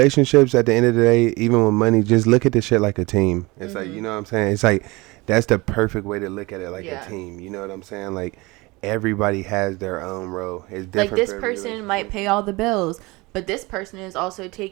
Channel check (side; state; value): left; quieter; 23.5 dB